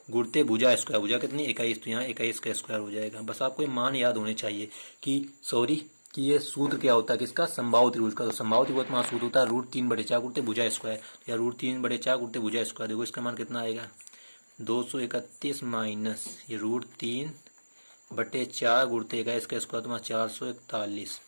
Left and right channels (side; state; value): both; inverted; correlation -1.00